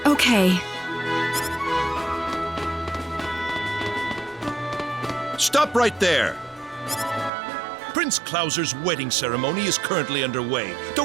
okay. Stop right there! Prince Clauser's wedding ceremony is currently underway.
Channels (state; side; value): drops out; left; at 7.3 s